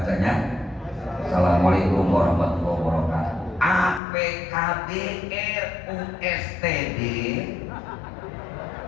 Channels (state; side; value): drops out; right; at 4.0 s